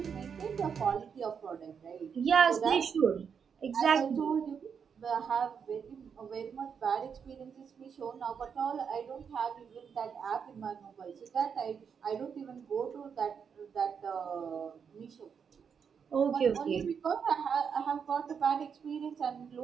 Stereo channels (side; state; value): left; quieter; 6.8 dB